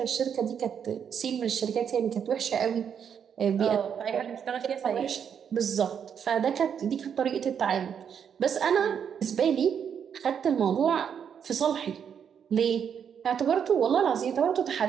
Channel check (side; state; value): left; quieter; 7.8 dB